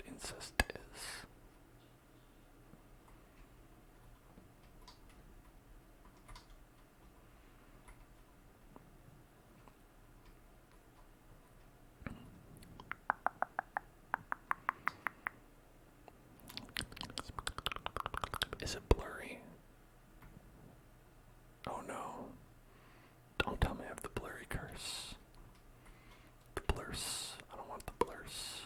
incest is. Is it blurry? Oh no. Don't tell me I have the blurry curse. The blurs. I don't want the blurs.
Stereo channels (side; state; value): both; identical; correlation 1.00